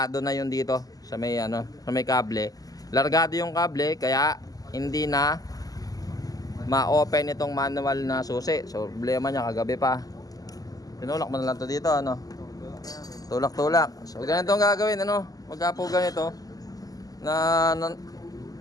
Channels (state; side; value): late; right; 0.17 ms